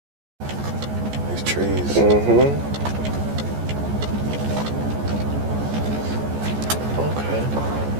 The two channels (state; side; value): late; left; 14 ms